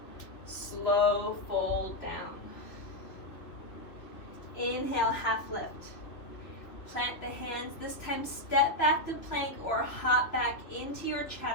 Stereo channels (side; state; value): right; late; 3.0 ms